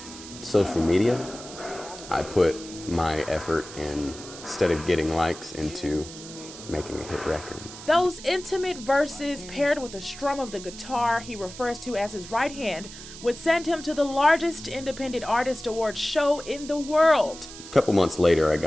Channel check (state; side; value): noise; right; hiss, 14 dB below the sound